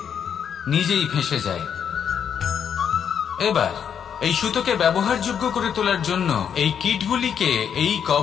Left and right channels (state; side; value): quieter; right; 8.0 dB